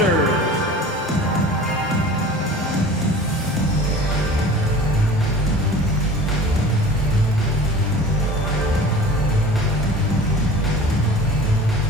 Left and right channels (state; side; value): normal; both; correlation 0.41